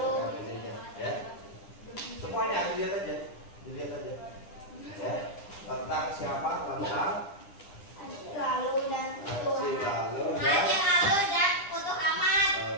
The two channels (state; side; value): late; right; 9.9 ms